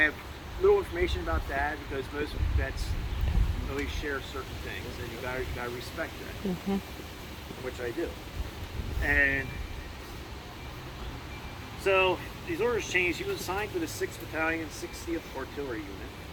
little information about Dad because most vets always share certain things, and you gotta respect that, which I do. And so these orders changed. He was assigned to the 6th Battalion, 60th Artillery Unit,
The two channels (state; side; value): identical; both; correlation 1.00